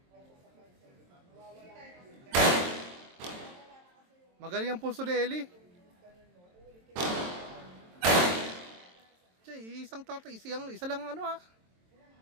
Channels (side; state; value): left; late; 23 ms